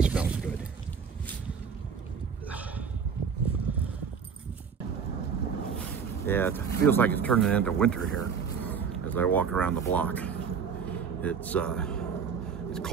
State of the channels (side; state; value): left; quieter; 6.5 dB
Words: smells good. Yeah, it feels like it's turning into winter here as I walk around the block. It's